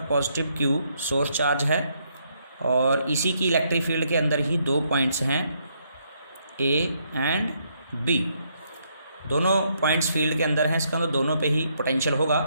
पॉजिटिव Q सोर्स चार्ज है, और इसी की इलेक्ट्रिक फील्ड के अंदर ही 2 पॉइंट्स हैं A एंड B। दोनों पॉइंट्स फील्ड के अंदर हैं, इसका मतलब दोनों पे ही पोटेंशियल होगा,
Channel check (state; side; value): inverted; both; correlation -0.74